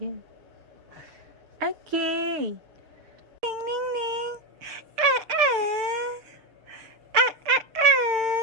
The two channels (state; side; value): late; left; 6.7 ms